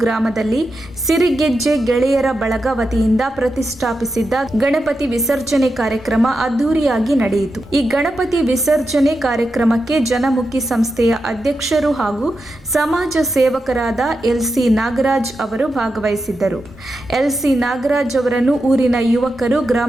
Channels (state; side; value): normal; both; correlation 0.88